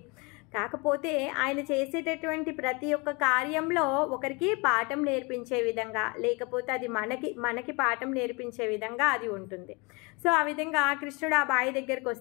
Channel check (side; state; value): right; quieter; 28.5 dB